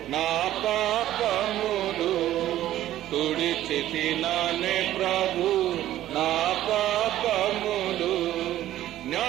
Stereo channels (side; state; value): left; quieter; 13.4 dB